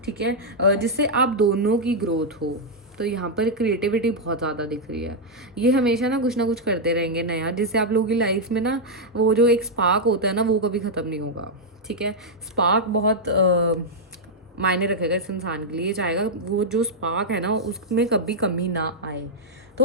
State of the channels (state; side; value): normal; both; correlation -0.04